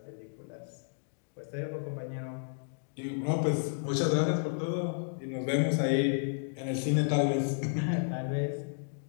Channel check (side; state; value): right; silent; digital silence